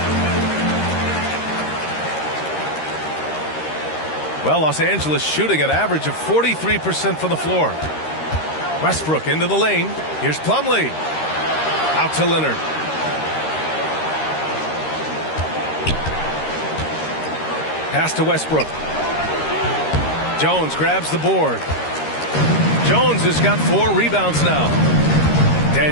Well, Los Angeles shooting an average of 43% from the floor. Westbrook into the lane. Here's Plumlee. Out to Leonard. Pass to Westbrook. Jones grabs the board. Jones has got 4 rebounds now.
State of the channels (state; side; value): late; right; 13 ms